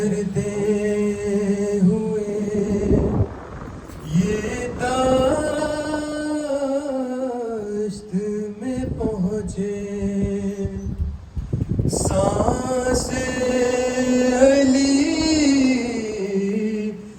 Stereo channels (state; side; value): identical; both; correlation 1.00